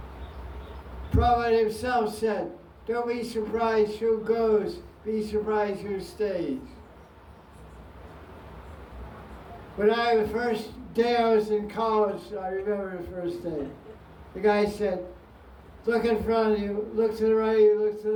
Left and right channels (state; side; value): identical; both; correlation 1.00